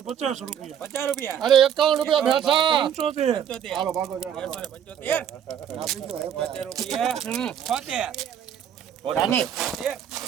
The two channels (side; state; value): left; quieter; 9.1 dB